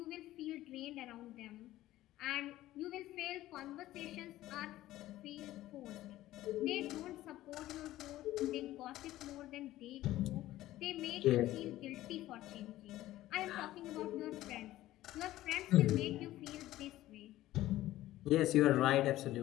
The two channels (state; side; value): quieter; right; 15.2 dB